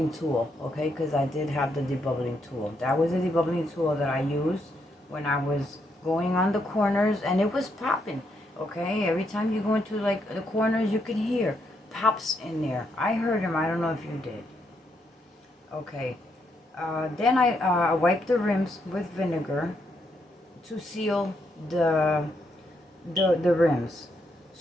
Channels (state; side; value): normal; both; correlation 0.77